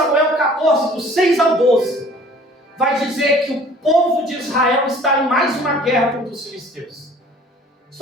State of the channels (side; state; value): both; normal; correlation 0.51